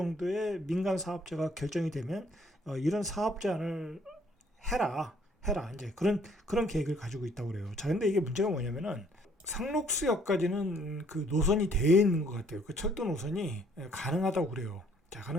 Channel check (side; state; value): both; normal; correlation 0.63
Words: 민간 사업자가 결정이 되면 이런 사업 제안을 해라 이제 그런 계획을 가지고 있다고 그래요. 자, 근데 이게 문제가 뭐냐면은 상록수역까지는 그 노선이 되어 있는 것 같아요. 그 철도 노선이 가능하다고 그래요. 자,